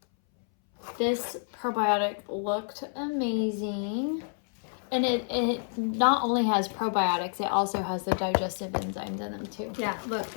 This probiotic looked amazing. And it not only has probiotics, it also has the digestive enzymes in them too. Yeah, look,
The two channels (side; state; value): right; silent; 59 dB below the other